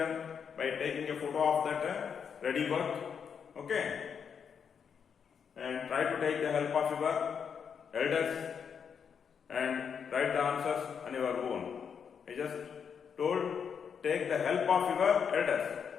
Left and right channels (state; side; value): quieter; right; 7.0 dB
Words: by taking a photo of that ready work. Okay, and try to take the help of your elders and write the answers on your own. I just told take the help of your elders,